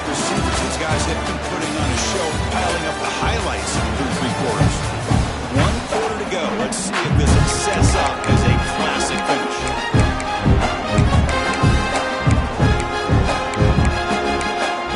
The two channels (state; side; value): identical; both; correlation 1.00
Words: receivers. These guys have been putting on a show, piling up the highlights through 3 quarters. 1 quarter to go. Let's see if this sets up as a classic finish.